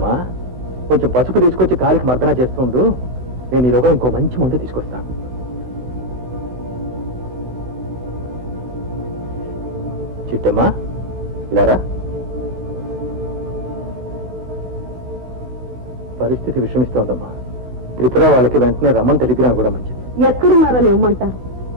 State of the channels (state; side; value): late; left; 16 ms